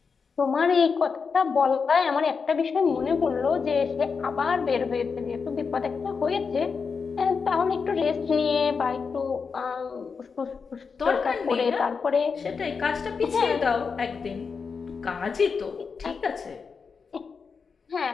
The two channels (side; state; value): right; quieter; 5.4 dB